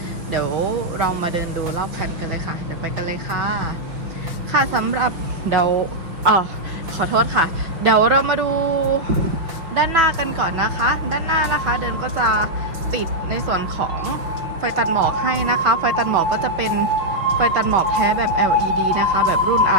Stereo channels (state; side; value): late; left; 6.1 ms